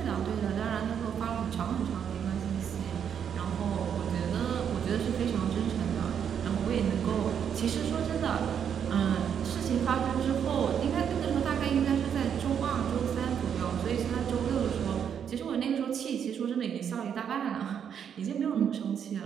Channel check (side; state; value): left; quieter; 8.1 dB